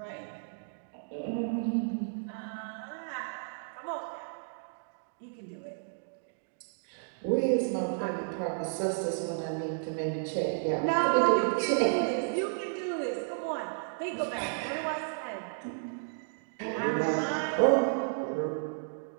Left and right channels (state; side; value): silent; left; digital silence